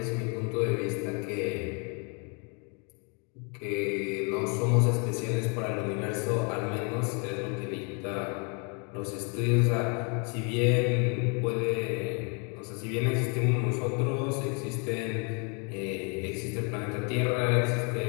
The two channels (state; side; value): quieter; right; 35.4 dB